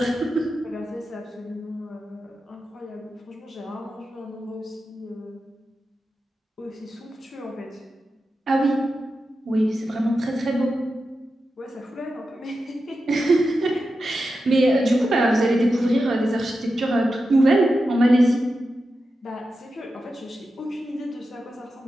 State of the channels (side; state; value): both; normal; correlation 0.90